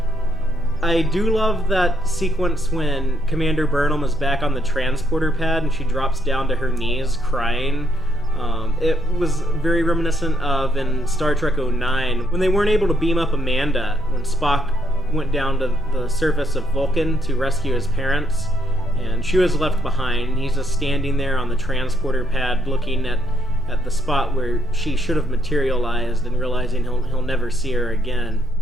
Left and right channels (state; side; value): normal; both; correlation 0.74